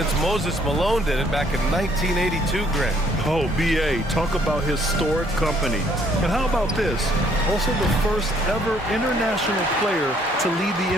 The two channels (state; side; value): normal; both; correlation 0.64